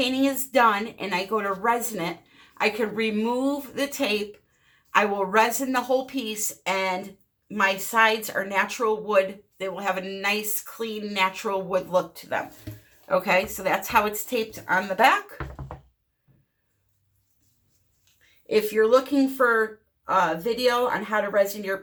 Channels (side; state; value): both; identical; correlation 1.00